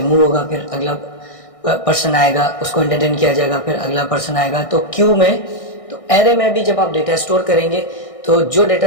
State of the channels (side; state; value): right; late; 1.6 ms